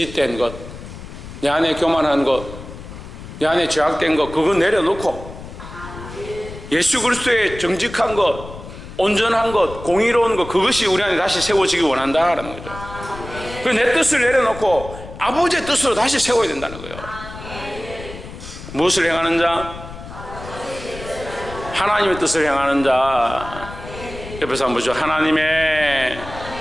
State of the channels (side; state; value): left; noise; rumble, 13 dB below the sound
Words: 것, 내 안에 교만한 것, 내 안에 죄악된 것, 그거 내려놓고 예수 그리스도의 정직한 것, 온전한 것, 공의로운 것, 그것이 우리 안에 다시 세워지기 원한다라는 거죠. 내 뜻을 내려놓고 아버지의 뜻으로 다시 세워야 된다는 거예요. 무엇을 행하는 자? 하나님의 뜻을 행하는 자. 옆에서 한번 보죠. 하나님의